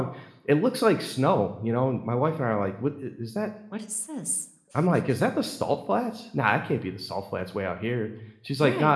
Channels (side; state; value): both; identical; correlation 1.00